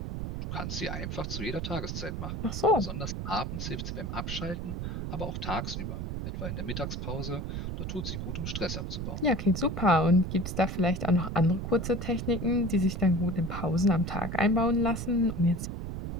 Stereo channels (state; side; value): noise; right; rumble, 4 dB below the sound